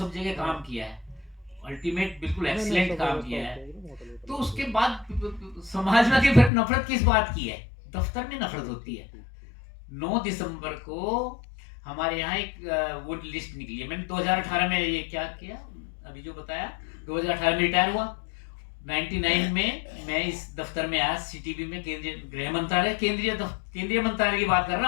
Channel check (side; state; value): right; drops out; at 6.5 s